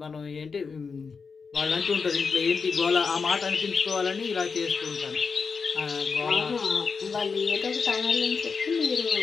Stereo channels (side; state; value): right; quieter; 5.2 dB